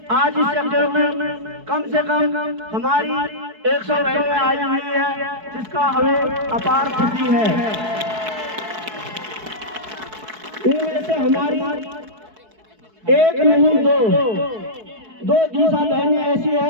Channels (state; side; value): late; left; 4.6 ms